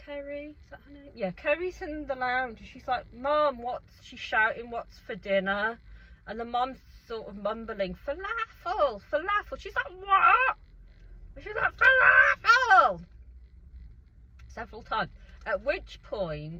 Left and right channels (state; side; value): identical; both; correlation 1.00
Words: Kerry? Is that her name? Yeah, Kerry's in the lounge and she's like, Mom, she's shouting, what's for dinner? And the mom's sort of mumbling, falafel. She's like, what? And she's like, falafel! Several times. At which